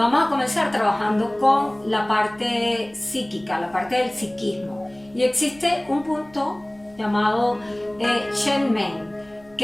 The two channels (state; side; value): noise; left; rumble, 28 dB below the sound